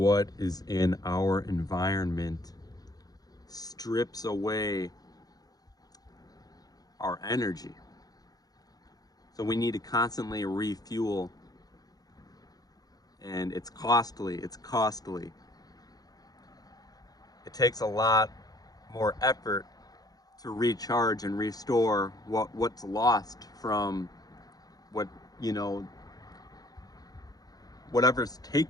is in our environment strips away our energy. So we need to constantly refuel, and it's costly. It's costly. It takes a lot more effort to recharge and restore what's lost from what, you know, whatever's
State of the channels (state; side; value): late; right; 0.18 ms